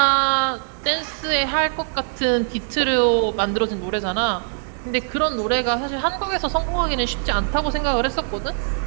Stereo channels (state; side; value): silent; left; digital silence